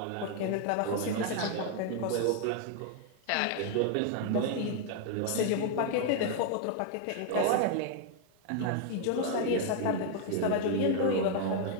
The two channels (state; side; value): different; both; correlation 0.00